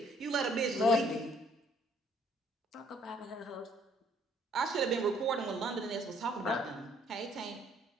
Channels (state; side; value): normal; both; correlation 0.63